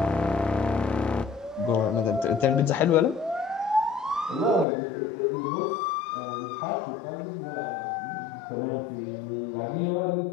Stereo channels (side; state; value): right; drops out; at 4.7 s